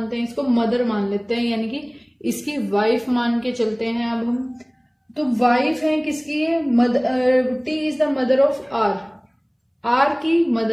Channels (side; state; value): both; identical; correlation 1.00